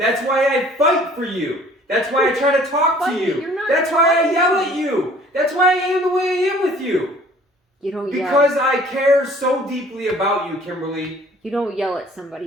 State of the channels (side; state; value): both; normal; correlation 0.53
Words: why I fight for you. That's why I try to talk to But you. you're not That's why I fighting. yell at you. That's why I am the way I am with you. You don't yell. Because I care so deeply about you, Kimberly. You don't yell at